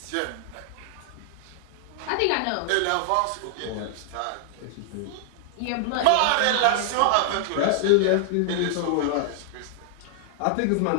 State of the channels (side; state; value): both; different; correlation -0.01